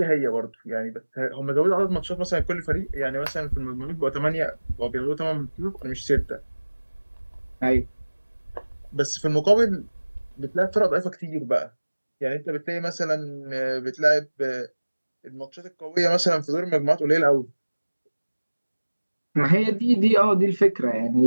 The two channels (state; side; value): inverted; both; correlation -1.00